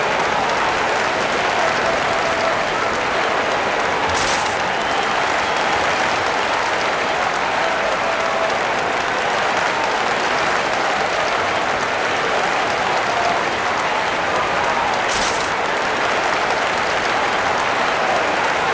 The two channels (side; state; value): both; identical; correlation 1.00